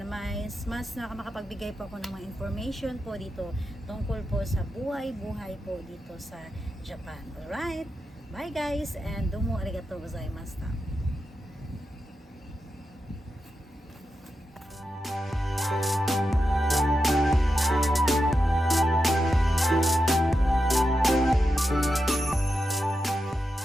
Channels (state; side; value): normal; both; correlation 0.88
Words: mas makakapagbigay po ako ng mga information po dito tungkol po sa buhay po dito sa Japan. Alright, bye guys, and domo arigatou gozaimashita.